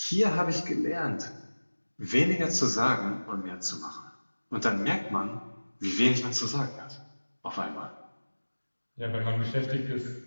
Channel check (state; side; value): inverted; both; correlation -1.00